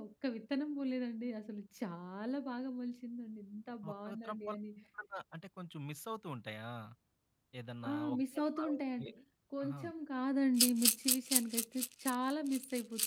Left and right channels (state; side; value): identical; both; correlation 1.00